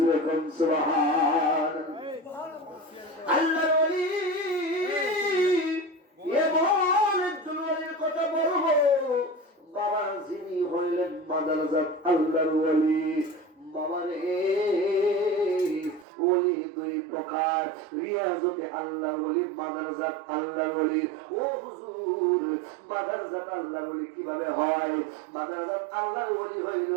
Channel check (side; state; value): left; drops out; at 16.1 s